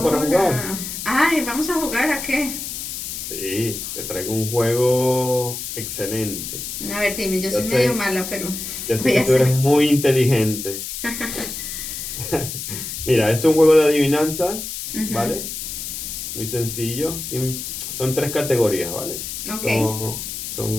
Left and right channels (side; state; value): left; noise; hiss, 6 dB below the sound